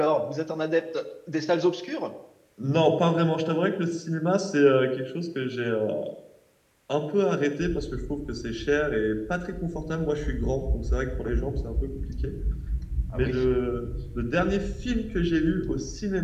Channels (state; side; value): identical; both; correlation 1.00